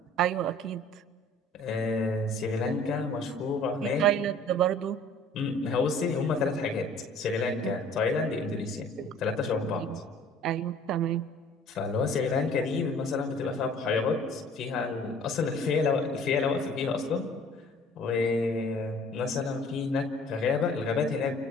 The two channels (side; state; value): both; normal; correlation 0.51